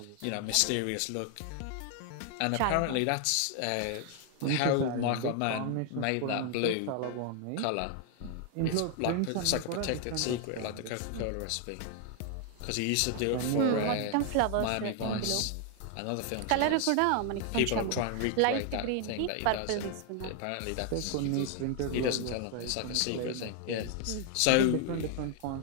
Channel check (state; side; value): different; both; correlation 0.00